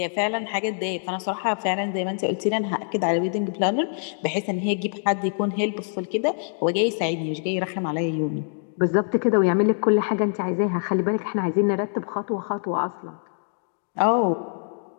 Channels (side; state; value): right; silent; 62 dB below the other